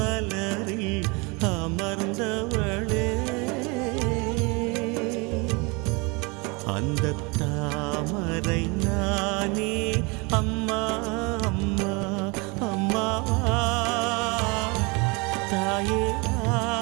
அமர்ந்தவளே அந்த தாமரை நானே அம்மா அம்மா. அம்மா தாயே வா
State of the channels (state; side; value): quieter; left; 28.6 dB